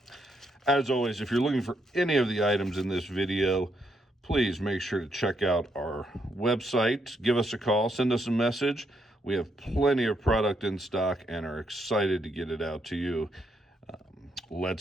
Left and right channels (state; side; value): normal; both; correlation 0.77